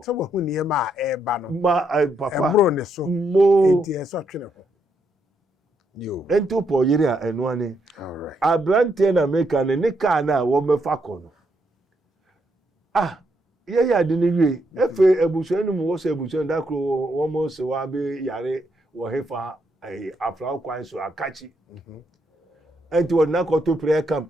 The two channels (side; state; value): both; normal; correlation 0.77